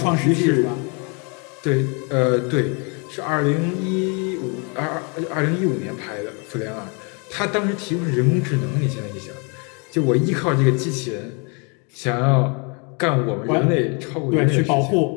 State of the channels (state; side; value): quieter; right; 34.4 dB